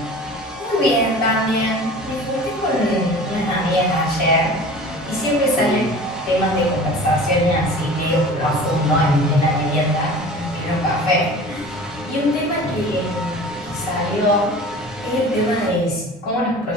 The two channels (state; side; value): normal; both; correlation 0.40